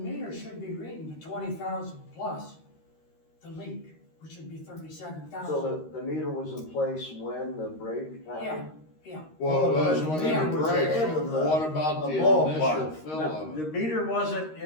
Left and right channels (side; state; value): right; late; 13 ms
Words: should be reading the 20,000 plus the leak, which would be 37,000. So the meter was in place when the break happened? Yeah, Yeah, Well, it was the when meter it was breaks. ahead of the- What about the the ballpark. initial fill No, of the it? meter wasn't